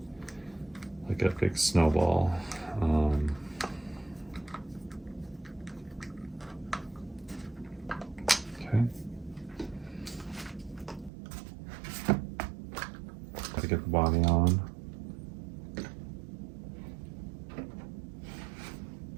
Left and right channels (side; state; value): left; drops out; at 11.1 s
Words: like a big snowball. Okay. Gotta get the body on.